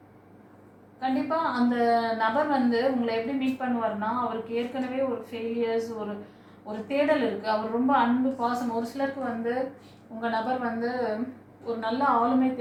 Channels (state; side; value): identical; both; correlation 1.00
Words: கண்டிப்பாக அந்த நபர் வந்து உங்களை எப்படி மீட் பண்ணுவார்னா, அவருக்கு ஏற்கனவே ஒரு ஃபெயிலியர்ஸ், ஒரு தேடல் இருக்குது. அவர் ரொம்ப அன்பு, பாசம். ஒரு சிலருக்கு வந்து உங்கள் நபர் வந்து ஒரு நல்ல ஆளுமை